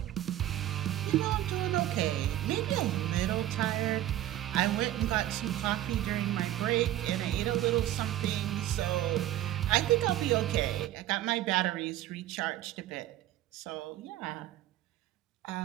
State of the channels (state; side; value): quieter; left; 13.7 dB